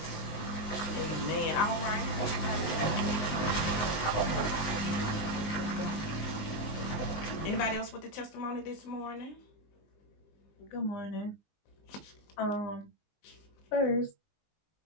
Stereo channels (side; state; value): right; late; 19 ms